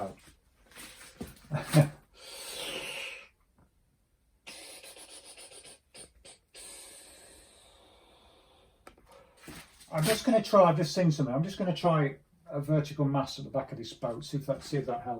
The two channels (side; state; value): both; identical; correlation 1.00